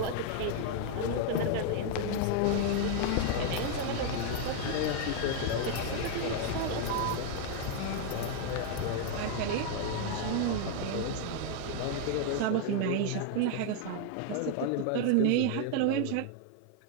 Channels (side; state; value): both; different; correlation 0.00